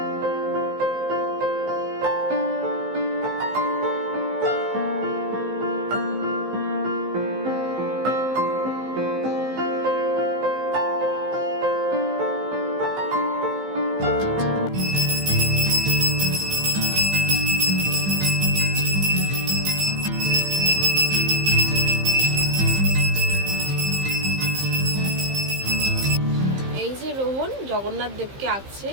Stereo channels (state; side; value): late; left; 15 ms